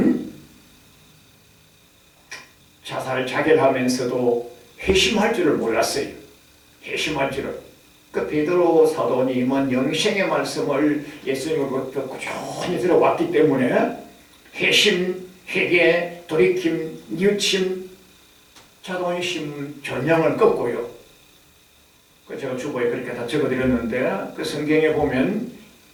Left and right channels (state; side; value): identical; both; correlation 1.00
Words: 자살 자결하면서도 회심할 줄을 몰랐어요. 회심할 줄을. 그 베드로 사도님은 영생의 말씀을 예수님으로부터 꾸준히 들어왔기 때문에 회심, 회개, 돌이킴, 뉘우침, 자존심, 전형을 꺾고요. 제가 주보에 그렇게 다 적어드렸는데 그 성경에 보면